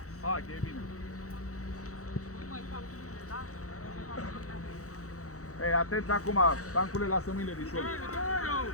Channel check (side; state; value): right; late; 0.65 ms